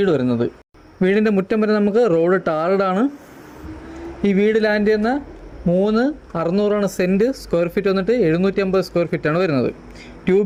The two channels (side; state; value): both; identical; correlation 1.00